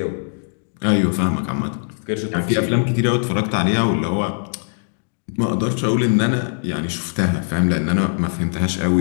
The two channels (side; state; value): right; silent; digital silence